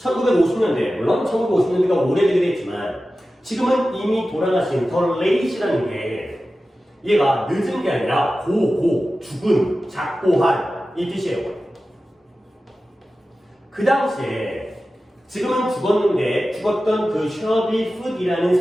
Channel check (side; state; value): both; normal; correlation 0.94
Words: 물론 1950년대가 오래되긴 했지만 지금은 이미 돌아가신 더 레이시라는 게 얘가 늦은 게 아니라 죽은, 작고 한 이 뜻이에요. 그 당시에 지금은 죽었는데 죽었던 그 셔비 풋이라는